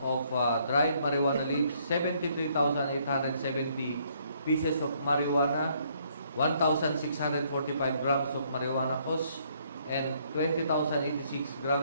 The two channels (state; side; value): inverted; both; correlation -0.67